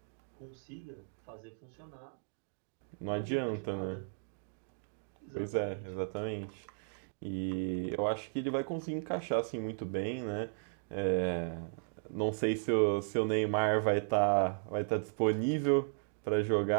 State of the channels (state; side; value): silent; left; digital silence